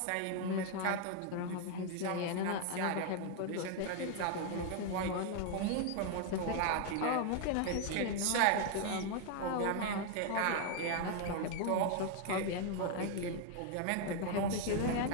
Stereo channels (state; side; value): different; both; correlation 0.00